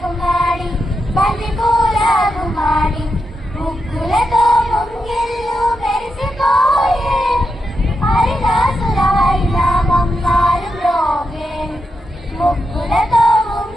గుమ్మడి బంతి పూల గుమ్మడి ముగ్గులతో ముంగిళ్ళు మెరిసిపోయే హరిదాసుల హరినామం మారుమ్రోగే ముగ్గులతో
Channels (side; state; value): both; normal; correlation 0.86